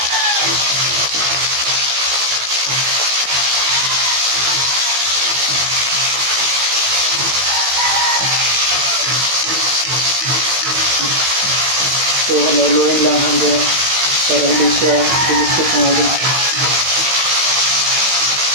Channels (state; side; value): late; left; 16 ms